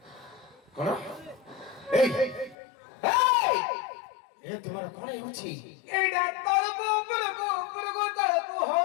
कोन ए ए तुम्हारा कोन होछि एडा तळको उपरको तळको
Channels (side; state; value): right; drops out; at 2.6 s